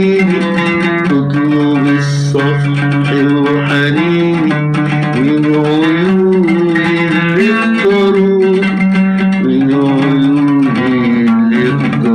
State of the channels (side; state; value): both; identical; correlation 1.00